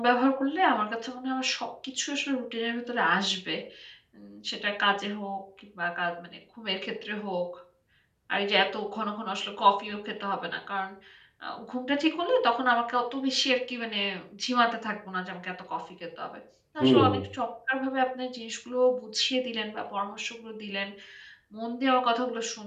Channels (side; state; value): both; identical; correlation 1.00